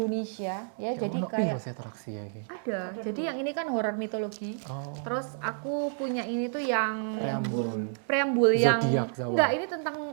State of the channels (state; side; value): silent; left; digital silence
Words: ya. Jadi kayak atraksi ya iki. ada. Jadi yang ini kan horor mitologi. Oh. Terus aku punya ini tuh yang Preambul. preambul yang Zodiak, Jawa. enggak, ini tentang